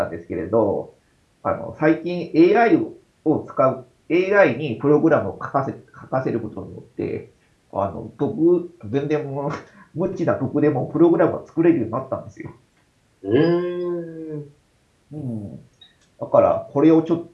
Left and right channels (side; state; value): both; identical; correlation 1.00